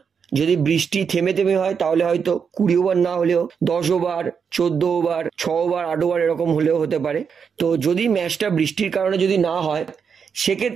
যদি বৃষ্টি থেমে থেমে হয় তাহলে হয়তো 20 ওভার না হলেও 10 ওভার, 14 ওভার, 6 ওভার, 8 ওভার এরকম হলেও হতে পারে। তো যদি ম্যাচটা বৃষ্টির কারণে যদি না হয়,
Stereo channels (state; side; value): quieter; left; 6.5 dB